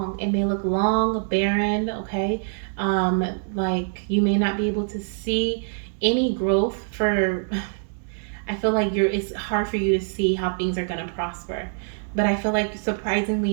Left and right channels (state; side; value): silent; left; digital silence